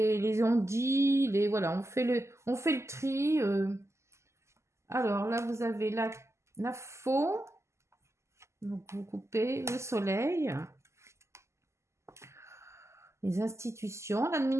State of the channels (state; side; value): late; left; 0.13 ms